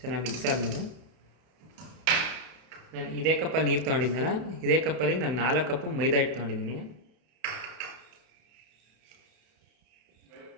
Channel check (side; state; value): left; late; 31 ms